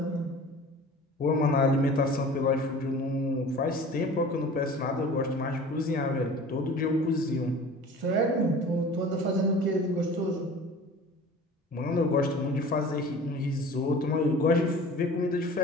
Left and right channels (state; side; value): normal; both; correlation 0.41